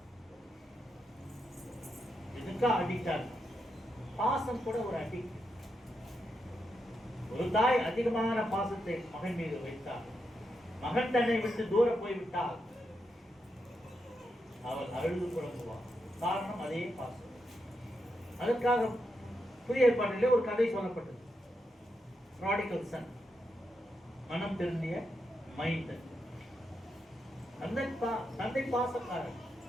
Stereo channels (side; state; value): both; normal; correlation 0.84